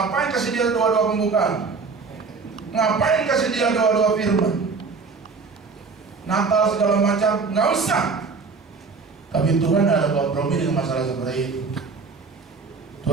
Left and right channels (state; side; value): quieter; left; 4.7 dB